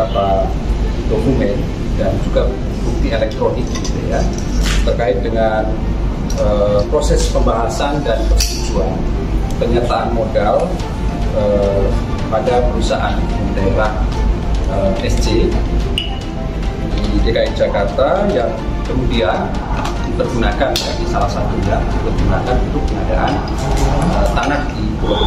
dokumen dan juga bukti elektronik gitu ya, terkait dengan proses pembahasan dan persetujuan penyertaan modal pada perusahaan daerah SC di DKI Jakarta yang kemudian dipergunakan di salah satunya dipergunakan untuk pengadaan tanah di Pulau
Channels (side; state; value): both; identical; correlation 1.00